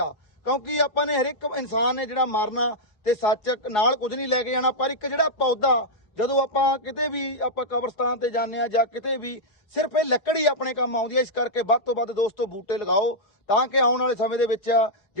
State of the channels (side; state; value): right; late; 4.8 ms